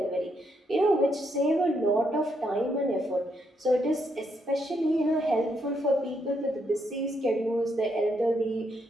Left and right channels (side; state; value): both; normal; correlation 0.77